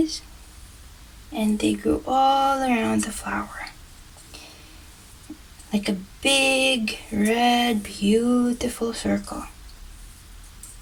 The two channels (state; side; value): identical; both; correlation 1.00